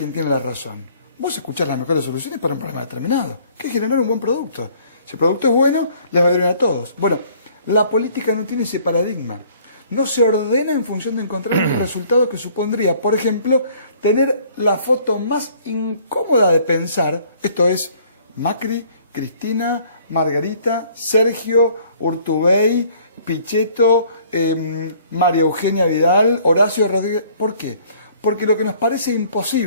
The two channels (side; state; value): both; inverted; correlation -0.58